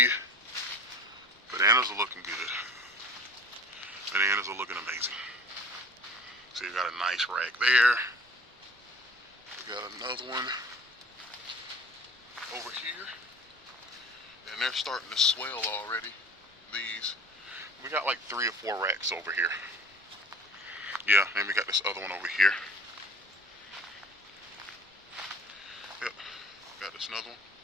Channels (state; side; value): normal; both; correlation 0.44